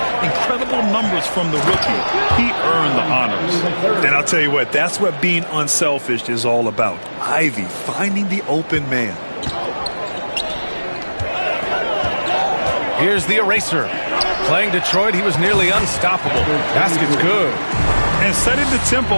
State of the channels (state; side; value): inverted; both; correlation -1.00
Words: Incredible numbers from the rookie. He earned the honors. And I'll tell you what, that's what being unselfish is all about. Ivy finding the open man. Here's the eraser. Playing Detroit, he was nearly unstoppable. Basket's good. And setting the